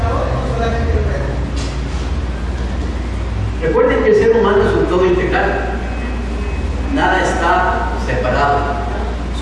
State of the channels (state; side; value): identical; both; correlation 1.00